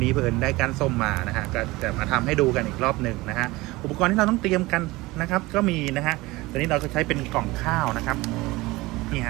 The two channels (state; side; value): quieter; left; 20.9 dB